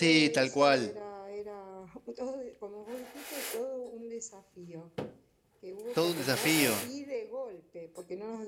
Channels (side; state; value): both; identical; correlation 1.00